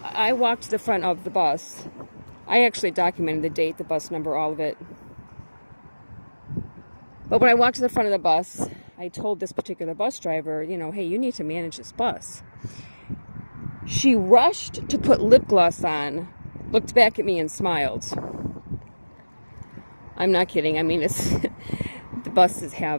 walked to the front of the bus. I actually documented the date, the bus number, all of it. But when I walked to the front of the bus, I told this particular bus driver, hey, you need to manage this bus. She rushed to put lip gloss on, looked back at me and smiled. I'm not kidding. I mean, it's the buses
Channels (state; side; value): inverted; both; correlation -1.00